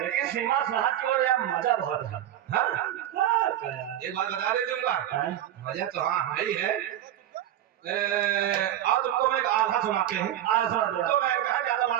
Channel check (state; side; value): quieter; left; 12.0 dB